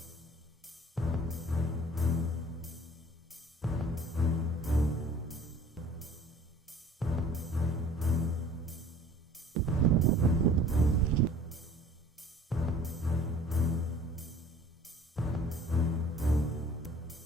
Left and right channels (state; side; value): normal; both; correlation 0.51